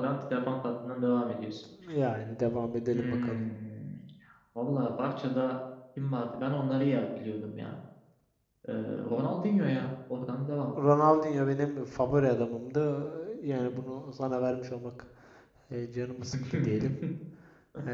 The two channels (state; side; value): identical; both; correlation 1.00